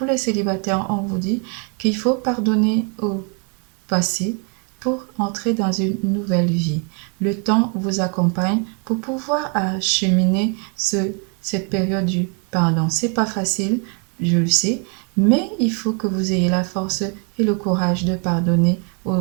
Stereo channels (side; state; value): left; quieter; 37.8 dB